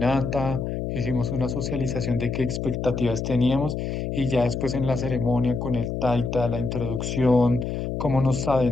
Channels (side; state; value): left; noise; hum, 3 dB below the sound